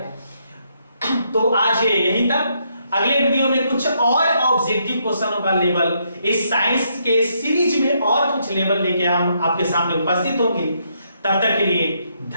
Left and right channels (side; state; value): both; inverted; correlation -0.75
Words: तो आज यहीं तक, अगले वीडियो में कुछ और ऑब्जेक्टिव क्वेश्चनों का लेवल इस साइंस के सीरीज में और कुछ लेवल लेके हम आपके सामने उपस्थित होंगे। तब तक के लिए